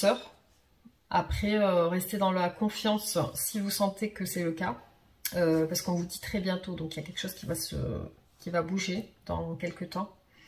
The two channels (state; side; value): identical; both; correlation 1.00